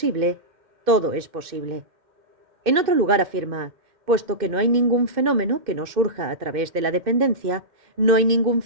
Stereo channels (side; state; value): left; late; 2.5 ms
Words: todo es posible. En otro lugar afirma, puesto que no hay ningún fenómeno que no surja a través de la dependencia, no hay ningún